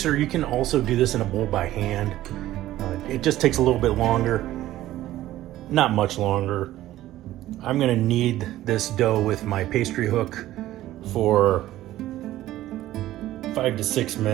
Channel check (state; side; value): quieter; left; 14.6 dB